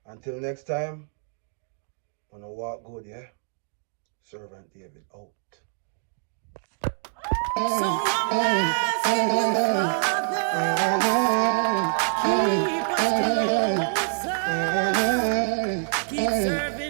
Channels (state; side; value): silent; left; digital silence